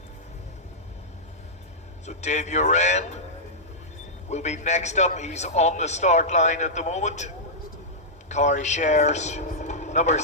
Dave Uran will be next up. He's on the start line at the moment. Car he shares number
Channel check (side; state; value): both; normal; correlation -0.10